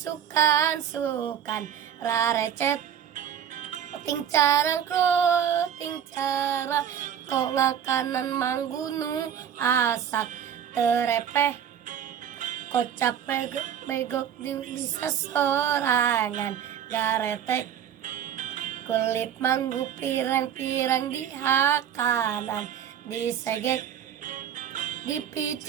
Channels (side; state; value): left; quieter; 9.1 dB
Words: rarecet ting carang kok ngakanan manggunu asak terepeh kocap begok bisa sorangan garetek kulit manggu pirang-pirang di hakanan disegek